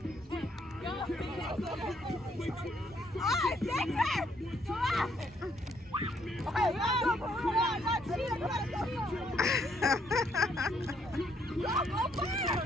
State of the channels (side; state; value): both; normal; correlation 0.70